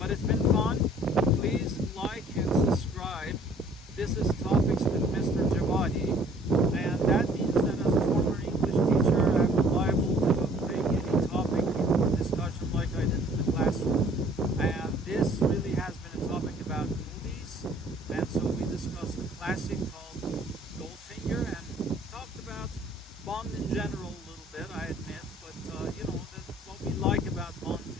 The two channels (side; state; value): both; normal; correlation 0.56